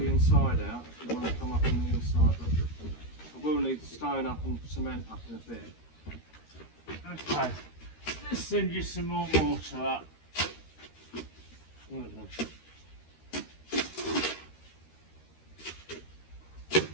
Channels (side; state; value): right; late; 13 ms